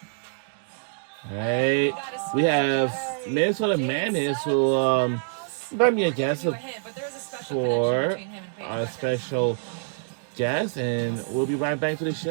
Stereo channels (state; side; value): silent; left; digital silence